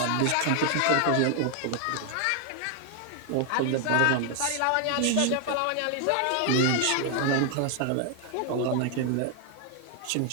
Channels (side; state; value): both; different; correlation 0.00